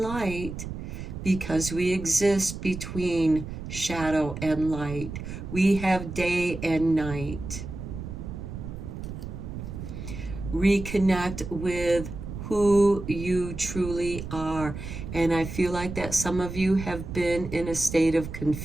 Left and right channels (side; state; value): right; noise; rumble, 8 dB below the sound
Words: because we exist between shadow and light. We have day and night. Reconnect with who you truly are. And I feel like that some of you have been in a state of